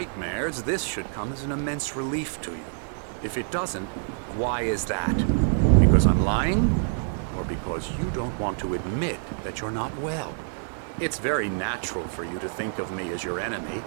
this should come as an immense relief to you. If it doesn't, why is that? Because I'm lying? Or because you don't want to admit that you're not well? It's very natural for you to think of me as your enemy.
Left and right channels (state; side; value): silent; left; 60 dB below the other